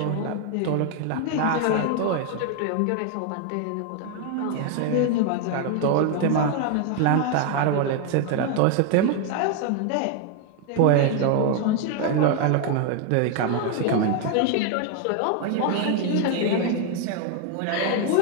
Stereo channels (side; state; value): both; different; correlation 0.00